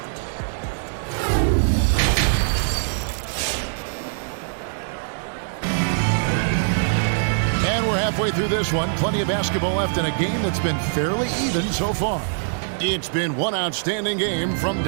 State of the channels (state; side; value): silent; left; digital silence